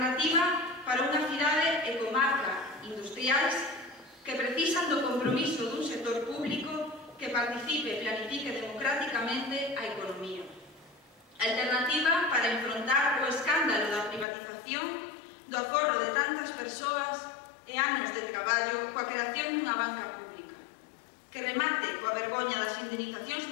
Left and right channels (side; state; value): right; drops out; at 14.2 s